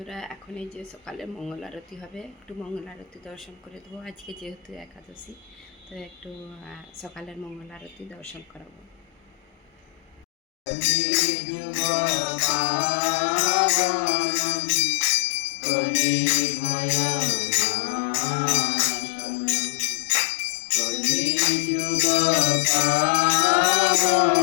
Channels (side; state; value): right; drops out; at 10.2 s